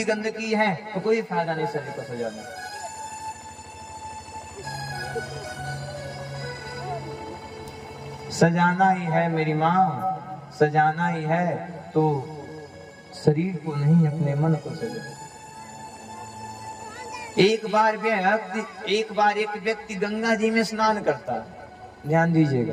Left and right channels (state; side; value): identical; both; correlation 1.00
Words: गंदगी है तो कोई फायदा नहीं शरीर को सजाने। सजाना ही है मेरी माँ, सजाना ही है तो शरीर को नहीं, अपने मन को सजा। एक बार एक व्यक्ति गंगा जी में स्नान करता है। ध्यान